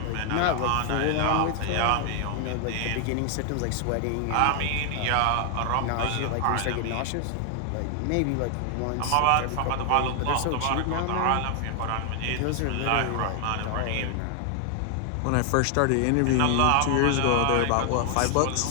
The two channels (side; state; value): both; different; correlation 0.00